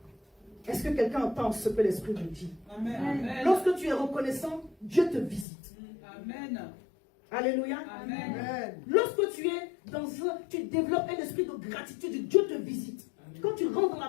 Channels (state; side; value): drops out; right; at 5.5 s